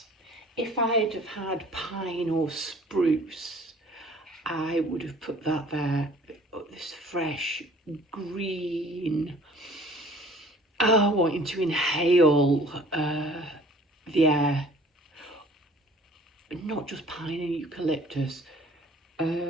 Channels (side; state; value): both; normal; correlation 0.52